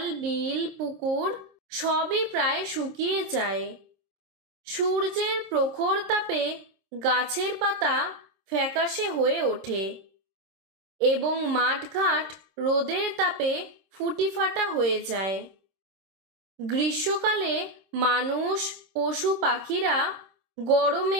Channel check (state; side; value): late; left; 26 ms